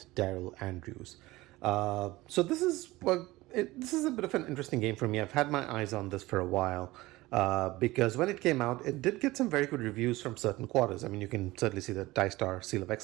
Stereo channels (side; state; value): left; quieter; 19.3 dB